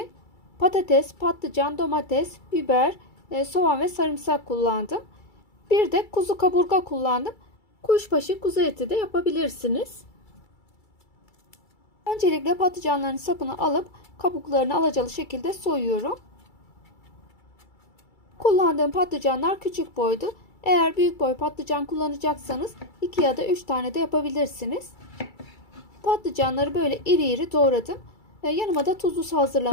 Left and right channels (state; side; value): late; right; 2.3 ms